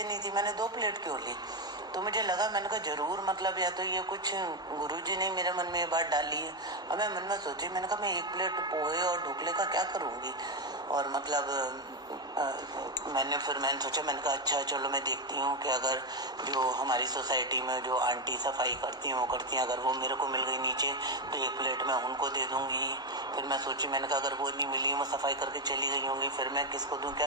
थी, मैंने 2 प्लेट क्यों ली। तो मुझे लगा, मैंने कहा जरूर मतलब या तो ये कुछ गुरुजी ने मेरे मन में ये बात डाली है। अब मैं मन में सोची, मैंने कहा मैं 1 प्लेट पोहे और ढोकले का क्या करूँगी। और मतलब मैंने सोचा, मैंने कहा अच्छा चलो मैं देखती हूँ कि अगर जो हमारी सोसाइटी में जो आंटी सफाई करती हैं वो करती हैं, अगर वो मेरे को मिल गई नीचे तो 1 प्लेट मैं उनको दे दूँगी। फिर मैं सोची, मैंने कहा अगर वो नहीं मिली, वो सफाई करके चली गई होंगी, फिर मैं किसको दूँ क्या।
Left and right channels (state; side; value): normal; both; correlation 0.07